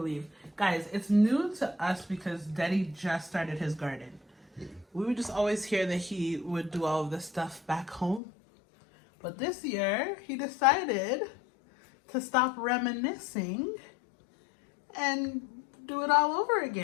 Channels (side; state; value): right; drops out; at 8.2 s